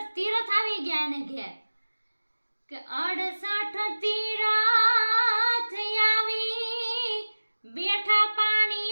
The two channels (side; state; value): both; inverted; correlation -1.00